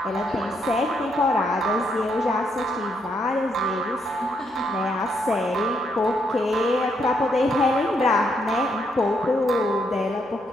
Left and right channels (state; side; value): normal; both; correlation 0.76